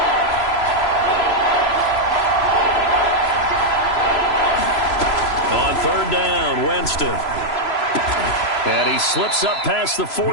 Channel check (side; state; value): right; late; 3.0 ms